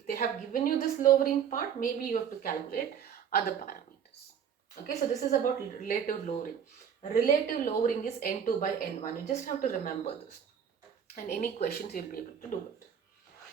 have given you this lowering part, maybe you have to calculate other parameters. Okay, so this is about relative lowering. Relative lowering is N2 by N1. You just have to remember this. And any questions, you'll be able to do it.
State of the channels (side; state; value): left; quieter; 8.1 dB